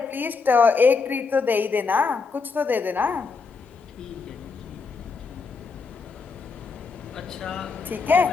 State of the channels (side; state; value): right; quieter; 4.8 dB